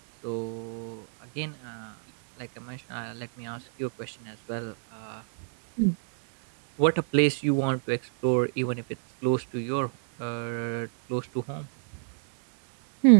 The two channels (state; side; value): silent; left; digital silence